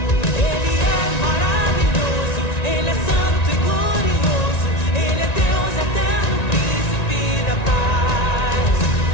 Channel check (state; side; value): late; right; 1.9 ms